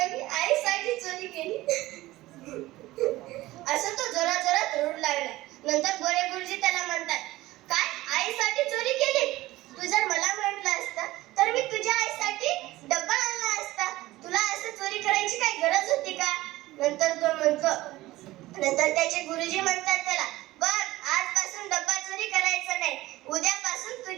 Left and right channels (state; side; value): quieter; left; 17.7 dB